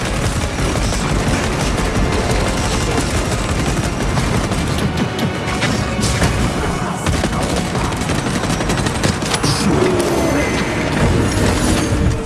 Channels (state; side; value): identical; both; correlation 1.00